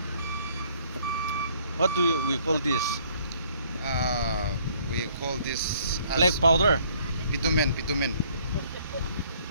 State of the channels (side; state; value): both; inverted; correlation -0.61